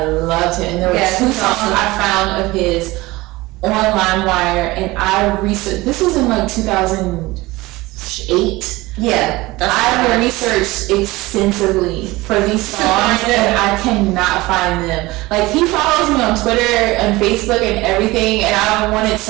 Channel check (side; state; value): left; quieter; 20.3 dB